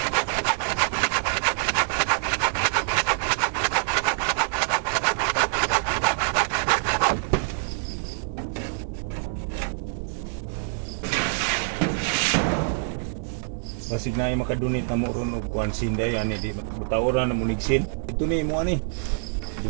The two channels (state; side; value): silent; left; digital silence